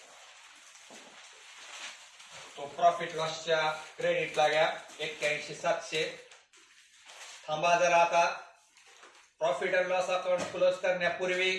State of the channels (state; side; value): identical; both; correlation 1.00